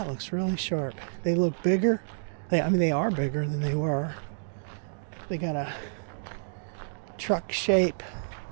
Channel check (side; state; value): left; silent; digital silence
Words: looks really sharp. They look bigger. They are bigger than they were. They got a truck shape.